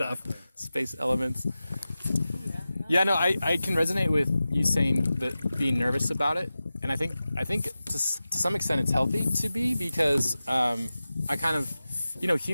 Exactly. space elements. Yeah. Yeah, no, I can resonate with you saying that being nervous about it, and I think to some extent it's healthy to be because I kind of,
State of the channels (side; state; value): both; inverted; correlation -0.95